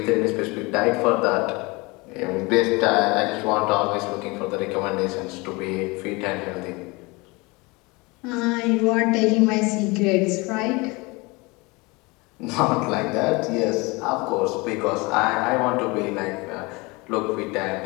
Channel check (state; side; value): quieter; right; 25.4 dB